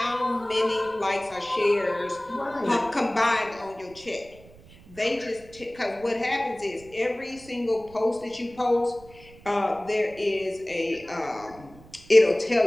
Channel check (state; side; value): noise; right; rumble, 23 dB below the sound